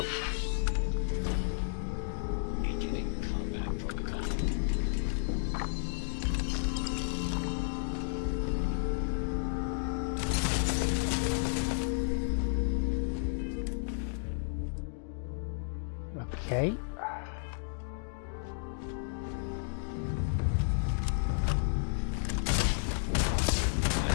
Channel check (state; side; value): silent; right; digital silence